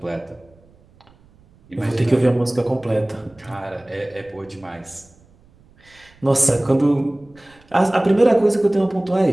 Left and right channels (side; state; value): right; noise; rumble, 29 dB below the sound